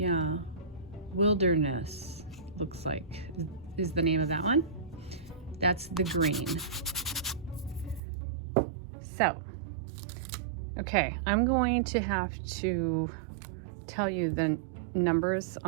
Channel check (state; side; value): drops out; left; at 8.0 s